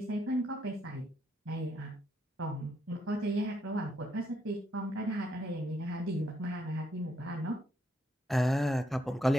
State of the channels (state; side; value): normal; both; correlation 0.75